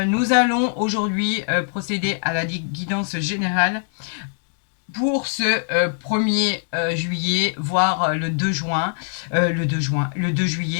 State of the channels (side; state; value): right; silent; digital silence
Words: allons aujourd'hui procéder à la guidance générale pour ce 1er juillet, voire le 2 juin, le 2